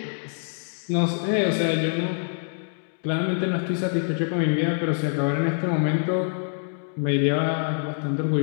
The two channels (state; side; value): silent; right; digital silence